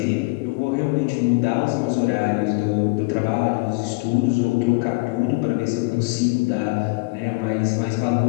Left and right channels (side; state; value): right; quieter; 27.1 dB